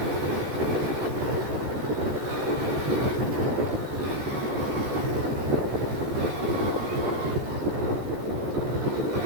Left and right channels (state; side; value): late; left; 14 ms